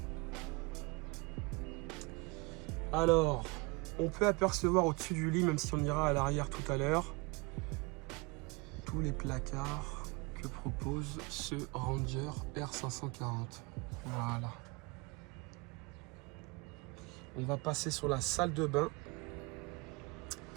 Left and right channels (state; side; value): quieter; left; 27.0 dB